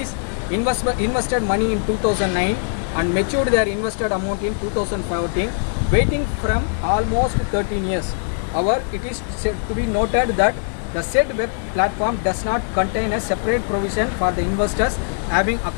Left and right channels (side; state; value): right; silent; digital silence